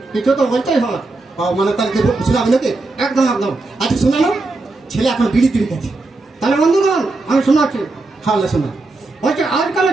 কিছু তো বলতেই হবে। মানে তাহলে শোনাবি নাকি? একদম একদম। আচ্ছা শোনানো, ছেলে এখন বিড়ি তিড়ি গেছে। তাহলে বন্ধুগণ আমি শোনাচ্ছি। হ্যাঁ শোনা। বলছে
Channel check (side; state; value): left; quieter; 3.2 dB